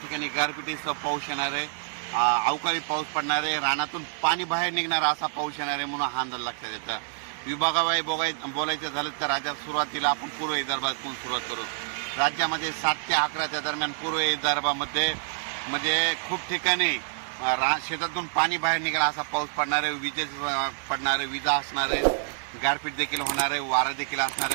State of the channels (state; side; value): silent; left; digital silence